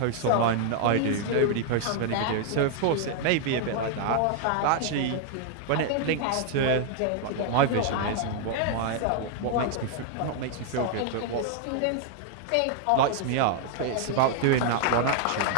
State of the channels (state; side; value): different; both; correlation 0.00